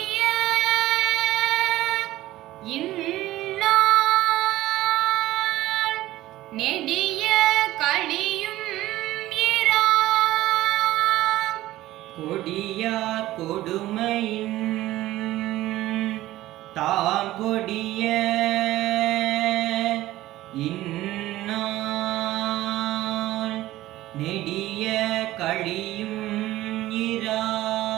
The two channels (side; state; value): left; quieter; 15.9 dB